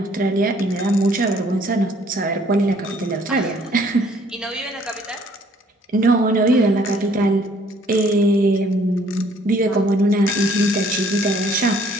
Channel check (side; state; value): both; normal; correlation 0.61